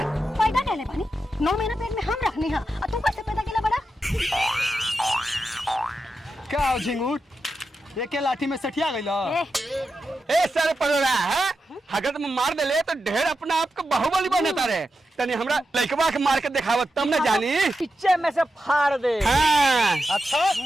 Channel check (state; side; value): normal; both; correlation 0.89